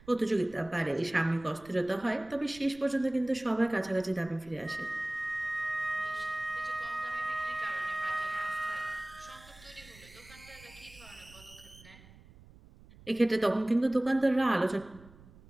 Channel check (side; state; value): right; noise; rumble, 22 dB below the sound